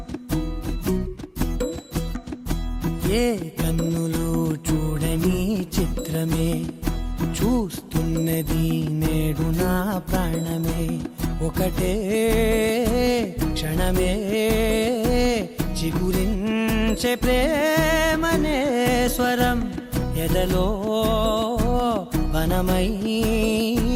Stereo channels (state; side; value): identical; both; correlation 1.00